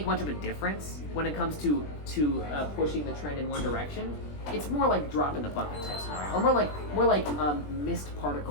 much of a difference when it comes to pushing the trend in one direction. It's more like drop in the bucket type scenario, or more like mist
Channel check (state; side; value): late; right; 20 ms